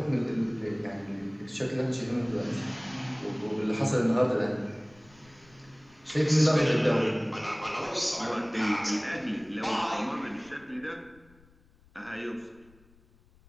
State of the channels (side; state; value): left; noise; rumble, 28 dB below the sound